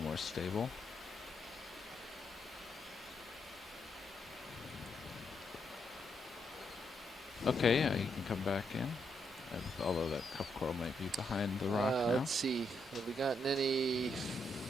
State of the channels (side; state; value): both; normal; correlation 0.79